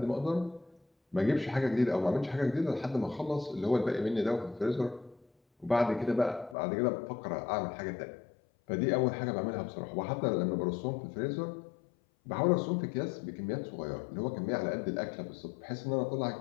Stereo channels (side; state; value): right; drops out; at 6.6 s